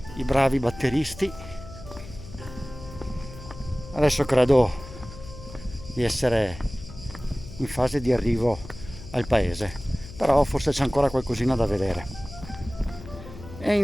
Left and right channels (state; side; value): noise; left; hum, 15 dB below the sound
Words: i bravi batteristi. Adesso credo di essere in fase di arrivo al paese, però forse c'è ancora qualcosina da vedere. E